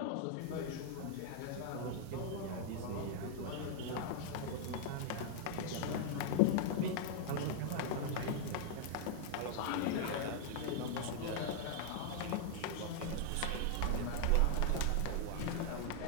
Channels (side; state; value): both; different; correlation 0.00